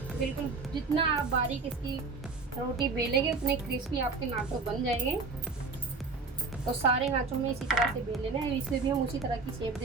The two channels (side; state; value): left; quieter; 4.2 dB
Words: बिल्कुल जितना आप बारीक इसकी रोटी बेलेंगे उतने क्रिस्पी आपके नाचो बन जाएंगे। तो सारे नाचो में इसी तरह से बेल लेना है, इसे भी हम उसी तरह की शेप